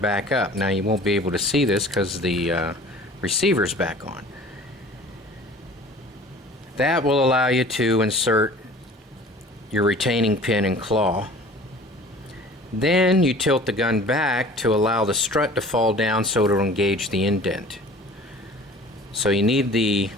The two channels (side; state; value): both; normal; correlation 0.46